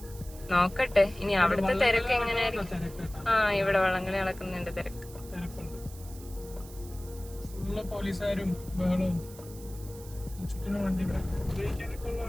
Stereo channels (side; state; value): right; noise; hiss, 19 dB below the sound